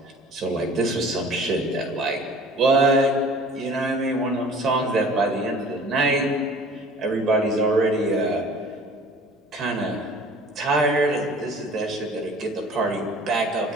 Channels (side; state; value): both; normal; correlation 0.47